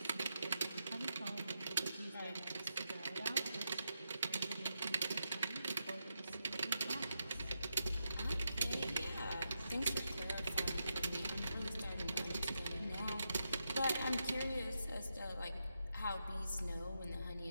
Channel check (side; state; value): both; inverted; correlation -0.86